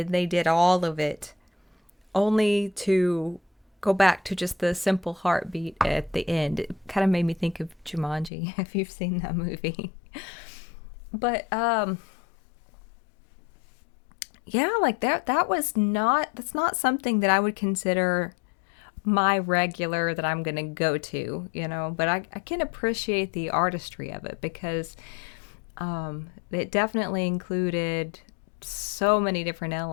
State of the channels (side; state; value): right; drops out; at 8.3 s